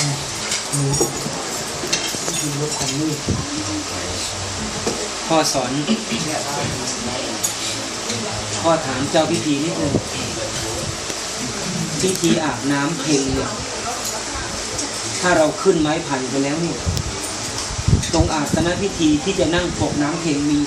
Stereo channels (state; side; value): identical; both; correlation 1.00